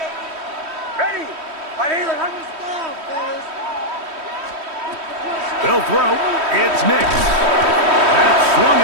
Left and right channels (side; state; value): left; late; 3.1 ms